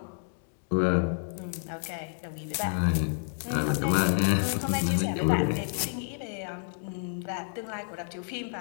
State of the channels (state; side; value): silent; right; digital silence